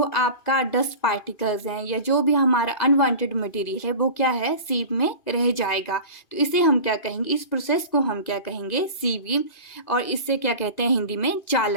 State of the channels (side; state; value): right; late; 2.5 ms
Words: आपका डस्ट पार्टिकल्स हैं या जो भी हमारा अनवांटेड मटेरियल है वो क्या है, सीव में रह जाएगा। तो इसे हम क्या कहेंगे, इस प्रोसेस को हम क्या कहेंगे, सीविंग, और इससे क्या कहते हैं हिंदी में,